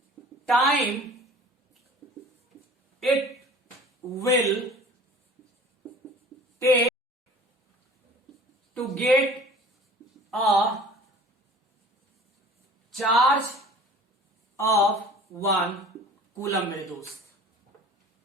time it will take to get a charge of 1 coulomb? मेरे दोस्त,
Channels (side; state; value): both; normal; correlation 0.45